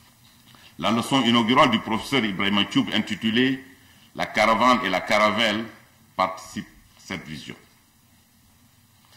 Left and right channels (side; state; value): both; identical; correlation 1.00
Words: La leçon inaugurale du professeur Ibrahim Choub intitulée « La caravane et la caravelle » participe à cette vision.